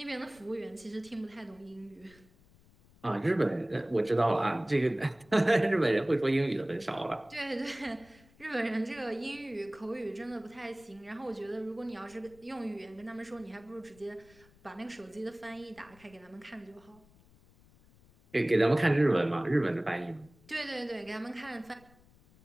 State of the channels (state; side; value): noise; left; rumble, 27 dB below the sound